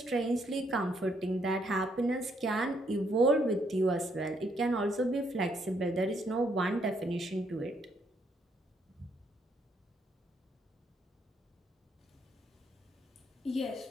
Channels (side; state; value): both; normal; correlation 0.72